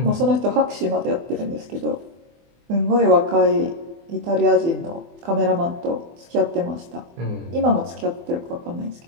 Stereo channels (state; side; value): late; left; 24 ms